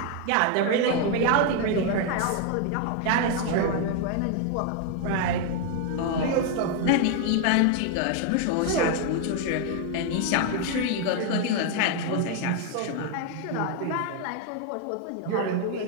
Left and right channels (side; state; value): both; different; correlation 0.01